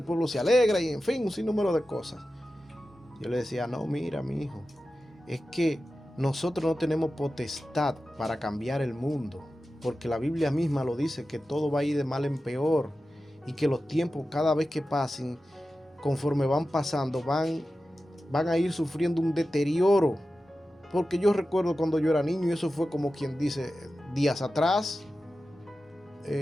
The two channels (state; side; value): normal; both; correlation 0.93